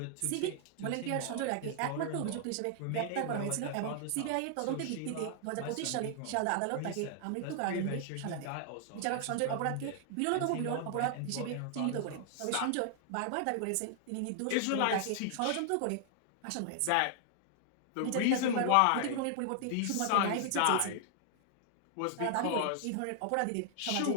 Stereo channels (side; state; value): both; different; correlation 0.00